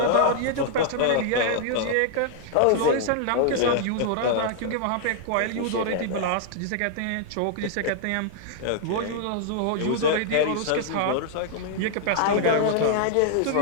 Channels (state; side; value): different; both; correlation -0.01